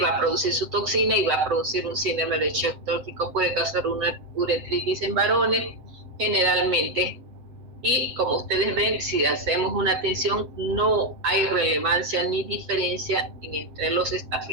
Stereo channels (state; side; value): late; left; 7.8 ms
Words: a producir su toxina y va a producir un síndrome de shock tóxico, puede causar una uretritis en varones generalmente. Y como ustedes ven, si hacemos una atención, no hay relevancia ni diferencia entre los